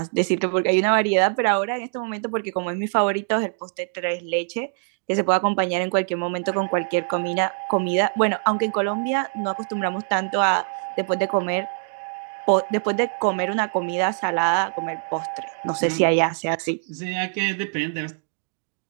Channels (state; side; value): silent; left; 63 dB below the other